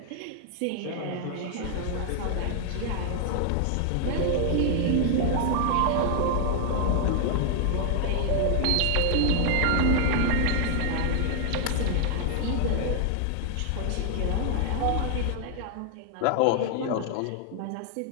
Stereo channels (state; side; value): different; both; correlation 0.00